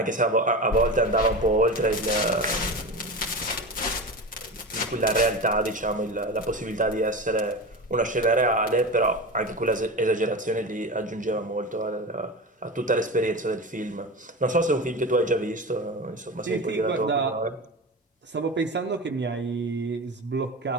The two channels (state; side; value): normal; both; correlation 0.26